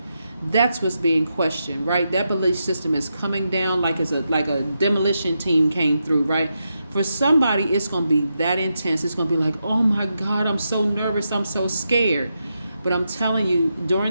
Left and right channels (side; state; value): both; inverted; correlation -0.86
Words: that's what's being questioned, right? That belief system is coming down like a demolition team came through, right? For somebody, it's going to be that intense. It's going to be like, oh my God, I'm so nervous, I'm so scared. But I'm telling you,